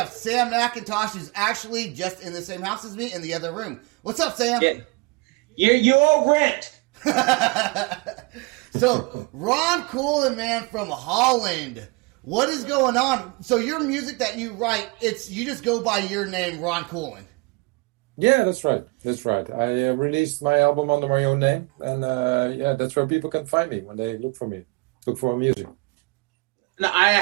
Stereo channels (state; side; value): quieter; left; 27.3 dB